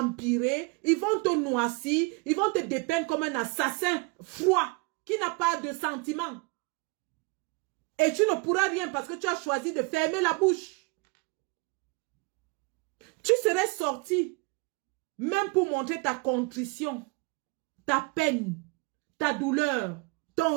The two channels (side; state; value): left; quieter; 28.3 dB